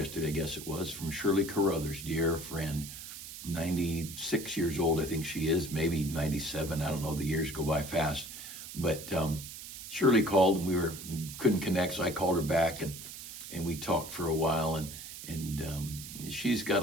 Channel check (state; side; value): noise; right; hiss, 11 dB below the sound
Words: I guess it was, from Shirley Carruthers, dear friend, 96 years old, I think she is, maybe 97. I don't know. The years go by fast. But Shirley called and we couldn't connect, so I called her back and we talked for a while. And she's got